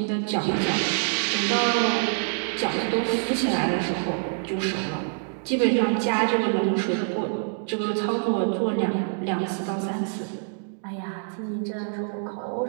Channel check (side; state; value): left; silent; digital silence